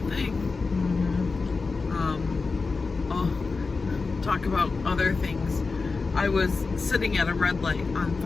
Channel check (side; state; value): right; quieter; 4.2 dB